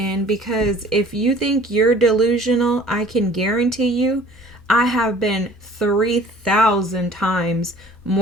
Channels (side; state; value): both; normal; correlation 0.51